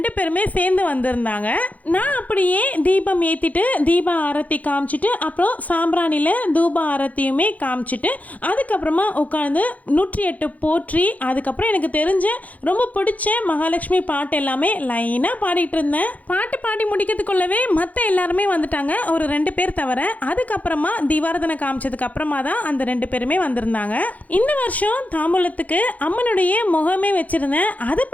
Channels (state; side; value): late; right; 0.075 ms